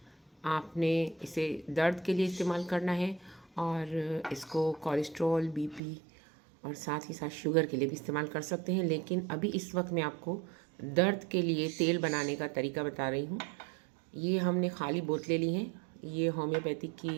आपने इसे दर्द के लिए इस्तेमाल करना है, और इसको कोलेस्ट्रॉल, बीपी और साथ ही साथ शुगर के लिए भी इस्तेमाल कर सकते हैं। लेकिन अभी इस वक्त मैं आपको दर्द के लिए तेल बनाने का तरीका बता रही हूँ। ये हमने खाली बोतलें ली हैं। ये होम्योपैथिक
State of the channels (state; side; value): drops out; left; at 5.8 s